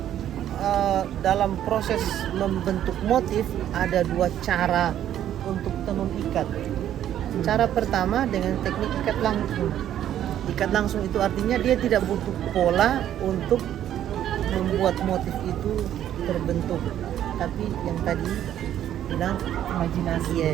dalam proses membentuk motif ada 2 cara untuk tenun ikat. Cara pertama dengan teknik ikat langsung. Ikat langsung itu artinya dia tidak butuh pola untuk membuat motif itu terbentuk. Tapi yang tadi bilang Imajinasi.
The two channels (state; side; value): quieter; left; 11.2 dB